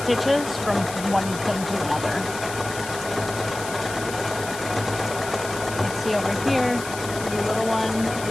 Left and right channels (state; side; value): noise; left; hiss, 11 dB below the sound